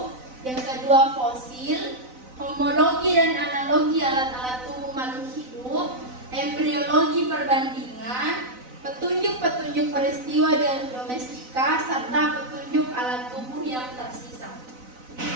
yang kedua fosil, homologi dan analogi alat-alat tubuh makhluk hidup, embriologi perbandingan, petunjuk-petunjuk peristiwa dan domestika, serta petunjuk alat tubuh yang tersisa.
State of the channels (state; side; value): late; left; 4.0 ms